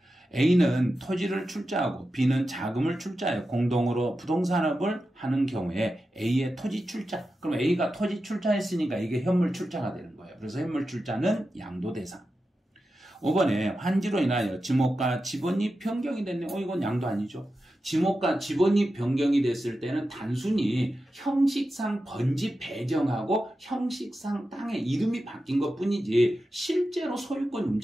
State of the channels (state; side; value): normal; both; correlation 0.91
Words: A는 토지를 출자하고 B는 자금을 출자해 공동으로 부동산업을 하는 경우에 A의 토지 출자. 그럼 A가 토지 출자했으니까 이게 현물 출자가 되는 거예요. 그래서 현물 출자는 양도 대상. 5번에 환지로 인하여 지목과 지번이 변경이 됐네요. 이건 양도 아니죠. 지목과 지번이 변경이 됐을 때는 단순히 형식상 번지 배정하고 형식상 땅의 이름이 바뀐 것 뿐이지 실제로 소유권